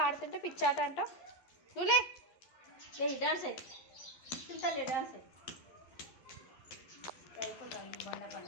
ఆడుతుంటే పిచ్చాట అంట. నువ్వులే డాన్స్ అయ్యి చింతలే డాన్స్ అయ్యి అయిపోతుంది. బండ పని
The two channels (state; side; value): late; right; 11 ms